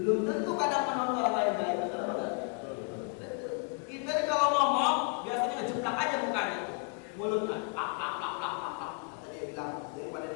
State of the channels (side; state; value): right; quieter; 34.8 dB